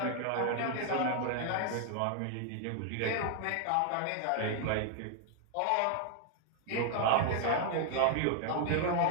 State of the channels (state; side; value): different; both; correlation 0.00